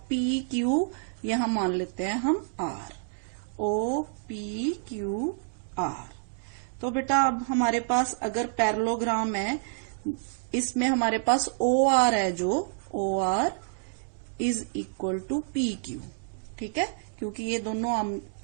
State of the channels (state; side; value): silent; left; digital silence